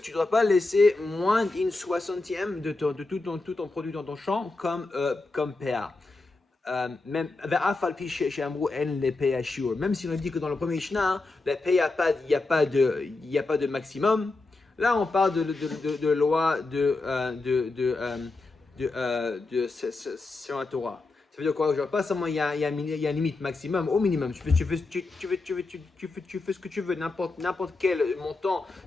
ne dois pas laisser moins d'une soixantième de tout ton produit dans ton champ comme PA. Même si on dit que dans le premier Mishnah, la PA, il n'y a pas de maximum. Là, on parle de loi sur la Torah. Ça veut dire quoi? Genre, pas seulement il y a une limite maximum, au minimum. Tu fais ce que tu veux, n'importe quel montant,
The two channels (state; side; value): quieter; right; 3.4 dB